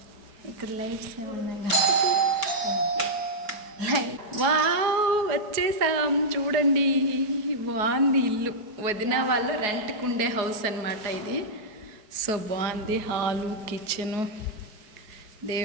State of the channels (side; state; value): left; late; 4.8 ms